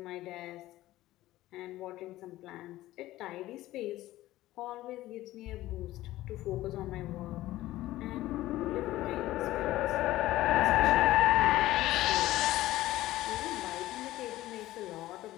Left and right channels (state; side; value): quieter; right; 16.0 dB